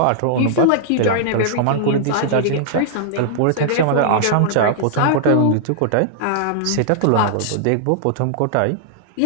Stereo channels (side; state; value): both; different; correlation -0.01